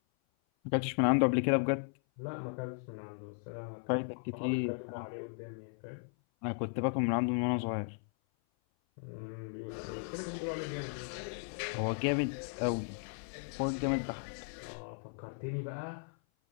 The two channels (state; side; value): silent; right; 54 dB below the other